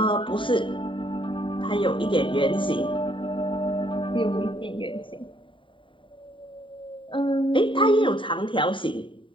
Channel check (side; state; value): right; late; 0.25 ms